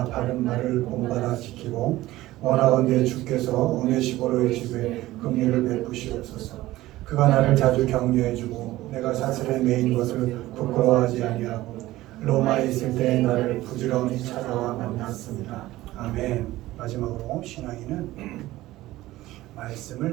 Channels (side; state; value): left; quieter; 16.8 dB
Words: 바른 말을 본받아 지키고 원하건대 주께서 오네시보로의 집에 긍휼을 베푸시옵소서. 그가 나를 자주 격려해주고 내가 사슬에 매인 것을 부끄러워하지 아니하고 로마에 있을 때 나를 부지런히 찾아와 만났습니다. 아멘. 마지막으로 신앙인은